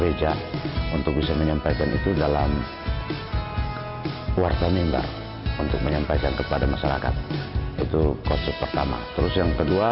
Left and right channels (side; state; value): both; identical; correlation 1.00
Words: untuk bisa menyampaikan itu dalam warta mimbar untuk menyampaikan kepada masyarakat. Itu konsep pertama. Terus yang